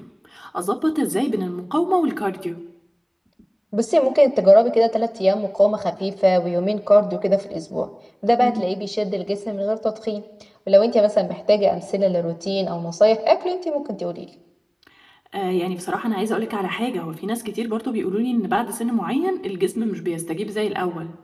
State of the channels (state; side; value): identical; both; correlation 1.00